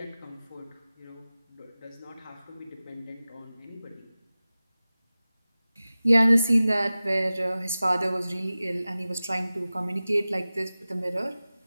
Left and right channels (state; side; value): inverted; both; correlation -0.96